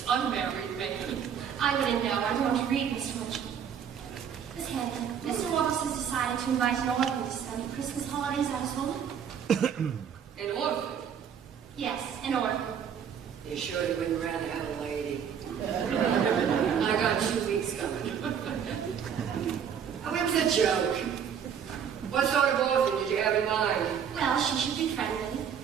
unmarried man. I wouldn't know. I don't read, Mr. Mitchell. Miss Hannigan, Mr. Warbucks has decided to invite an orphan to spend the Christmas holidays at his home. An orphan? Yes, an orphan. You sure you wouldn't rather have a lady? I got 2 weeks coming. Oh, it was a joke. What sort of orphan did you have in mind? Well, she should be friendly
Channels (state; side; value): quieter; left; 8.0 dB